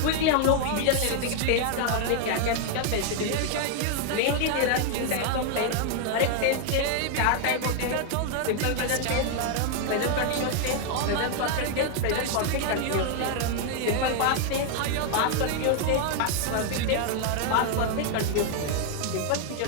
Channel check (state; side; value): different; both; correlation 0.00